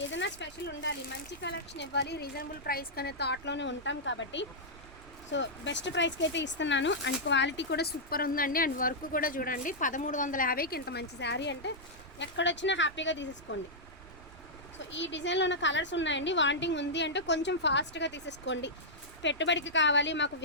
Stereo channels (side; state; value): right; noise; rumble, 20 dB below the sound